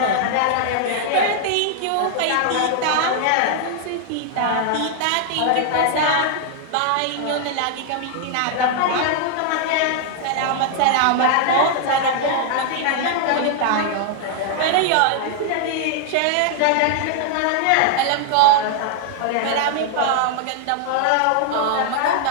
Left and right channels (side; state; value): both; different; correlation 0.00